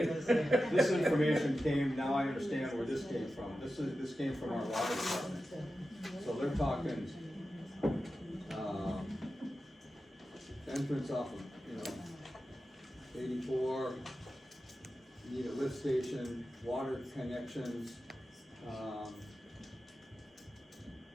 this information came, now I understand where this came from. This came from our water department. So they're talking, entrance off of, you know, 84, need a lift station, water connections,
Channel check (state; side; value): normal; both; correlation 0.92